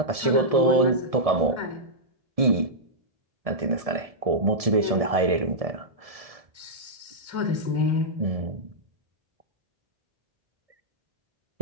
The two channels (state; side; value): late; left; 1.7 ms